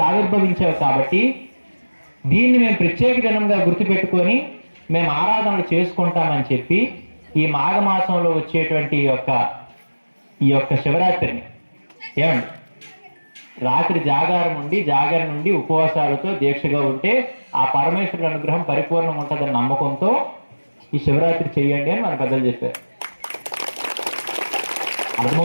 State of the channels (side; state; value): both; inverted; correlation -1.00